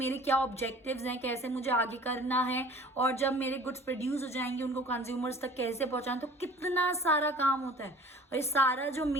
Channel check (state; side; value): normal; both; correlation 0.47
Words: क्या ऑब्जेक्टिव्स हैं, कैसे मुझे आगे करना है, और जब मेरे गुड्स प्रोड्यूस हो जाएंगे उनको कंज्यूमर्स तक कैसे पहुंचाएं. तो कितना सारा काम होता है, और ये सारा जो